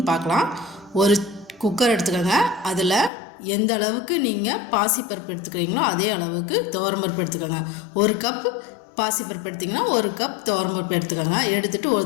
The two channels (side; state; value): right; drops out; at 3.1 s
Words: பார்க்கலாம். ஒரு குக்கர் எடுத்துக்கோங்க. அதில் எந்த அளவுக்கு நீங்கள் பாசிப்பருப்பு எடுத்துக்கிறீங்களோ அதே அளவுக்கு துவரம்பருப்பு எடுத்துக்கோங்க. ஒரு கப் பாசிப்பருப்பு எடுத்திங்கன்னா ஒரு கப் துவரம்பருப்பு எடுத்துக்கோங்க. எடுத்துகிட்டு